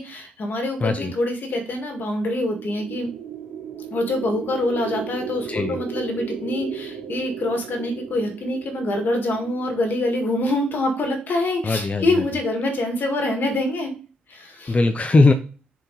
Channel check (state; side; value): normal; both; correlation 0.78